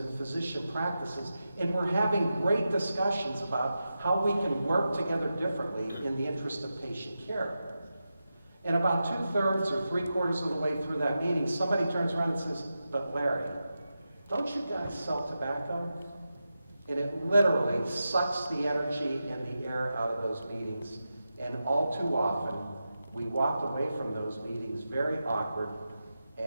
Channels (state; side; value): inverted; both; correlation -0.91